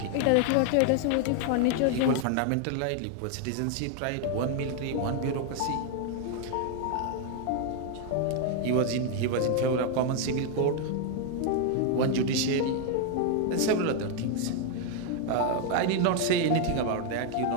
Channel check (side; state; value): both; different; correlation 0.00